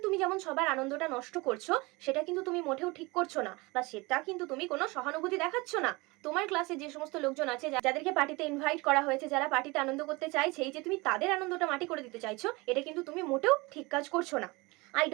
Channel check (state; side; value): quieter; left; 24.6 dB